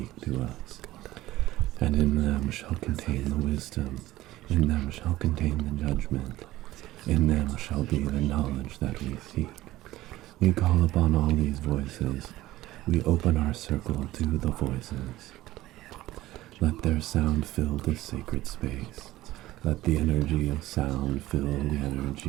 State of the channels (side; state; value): left; quieter; 16.3 dB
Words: to us. And in them shall contain the wisdom. In them shall contain the judgment. In them shall be the knowledge that we seek. We call upon all these voices. We open our circle to the voices. Let their sound fill this sacred space. Let the energy of sound fill the